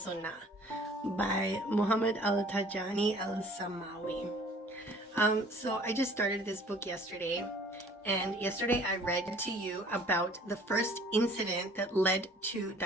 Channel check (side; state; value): both; normal; correlation 0.52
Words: by Muhammad Al-Tijani Al-Samawi. So I just started this book yesterday, and yesterday I read to you about the first incident that led to